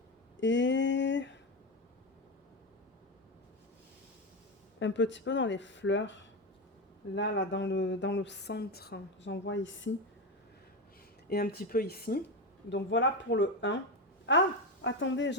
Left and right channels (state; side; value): normal; both; correlation 0.15